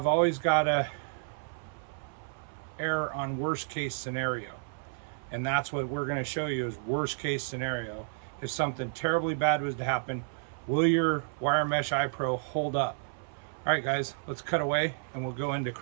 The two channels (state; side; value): silent; left; 57 dB below the other